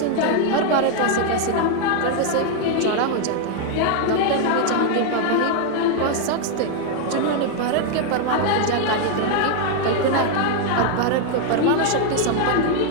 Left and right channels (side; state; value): both; different; correlation 0.00